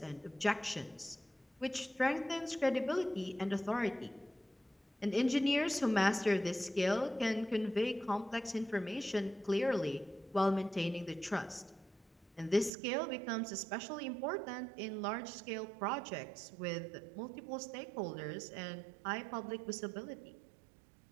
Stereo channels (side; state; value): left; drops out; at 12.7 s